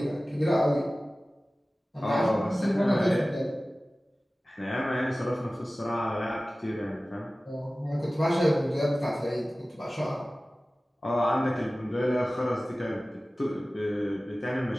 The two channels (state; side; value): normal; both; correlation 0.97